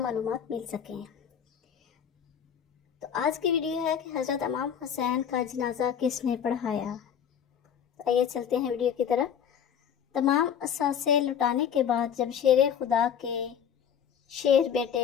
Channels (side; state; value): right; quieter; 8.4 dB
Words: معلومات مل سکیں۔ تو آج کی ویڈیو ہے کہ حضرت امام حسین کا جنازہ کس نے پڑھایا۔ آئیے چلتے ہیں ویڈیو کی طرف۔ تمام اثاثے لٹانے کے بعد جب شیر خدا کے شیر